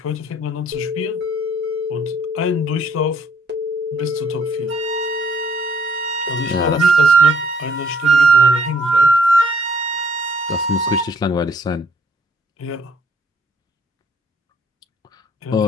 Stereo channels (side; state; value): both; normal; correlation 0.64